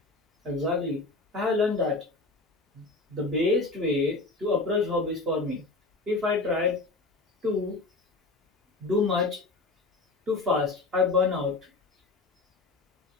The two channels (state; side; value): quieter; right; 3.5 dB